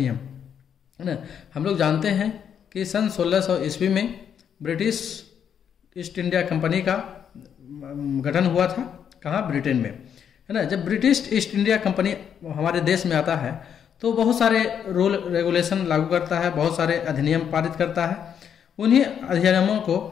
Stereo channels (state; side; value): quieter; right; 8.2 dB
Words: है ना। हम लोग जानते हैं कि सन 1600 ईस्वी में ब्रिटिश ईस्ट इंडिया कंपनी का गठन हुआ था। कहाँ? ब्रिटेन में, है ना। जब ब्रिटिश ईस्ट इंडिया कंपनी हमारे देश में आता है तो बहुत सारे रूल रेगुलेशन लागू करता है, बहुत सारे अधिनियम पारित करता है। उन्हीं अधिनियमों